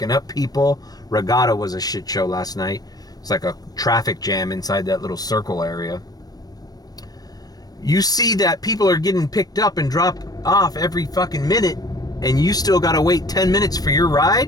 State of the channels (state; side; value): late; right; 0.19 ms